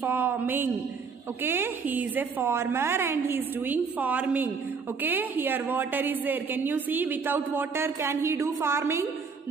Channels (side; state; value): left; quieter; 5.3 dB